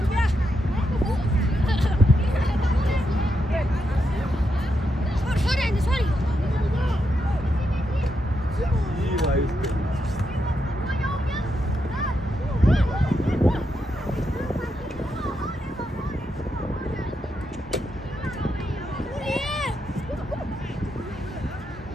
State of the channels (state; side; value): normal; both; correlation 0.83